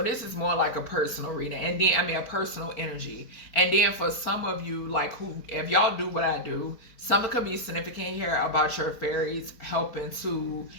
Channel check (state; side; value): late; right; 4.5 ms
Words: this is more like a personal reading. And then, I mean, a personal energy. And then for some of you, like who, if y'all do what I do, something could be significant here about your fairies helping